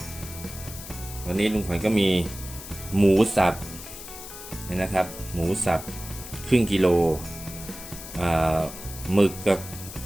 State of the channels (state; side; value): noise; left; hiss, 13 dB below the sound